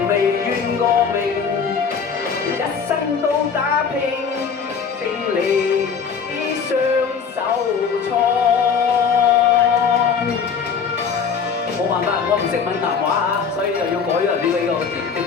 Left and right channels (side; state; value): right; quieter; 6.2 dB